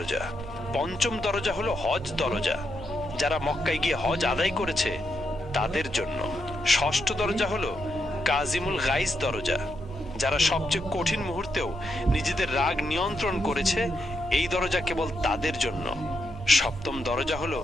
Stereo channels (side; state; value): right; noise; hum, 14 dB below the sound